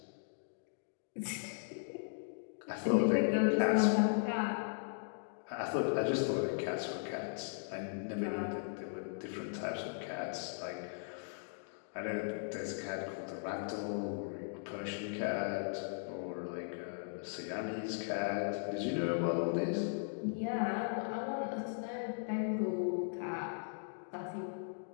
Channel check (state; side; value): silent; right; digital silence